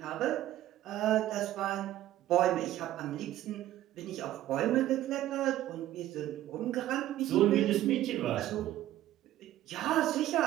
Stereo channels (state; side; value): quieter; left; 13.8 dB